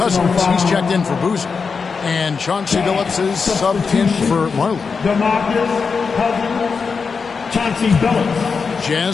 he's checked in for Boozer. And Chauncey Billups is subbed in for Marley. DeMarcus Cousins, Chauncey Billups.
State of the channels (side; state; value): right; quieter; 5.2 dB